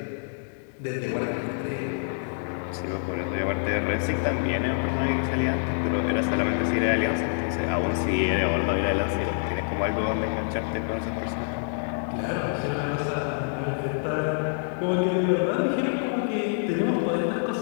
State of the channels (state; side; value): silent; right; 60 dB below the other